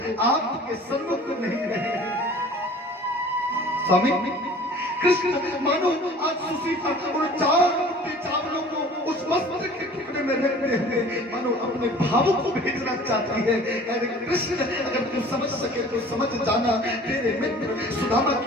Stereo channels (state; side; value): normal; both; correlation 0.47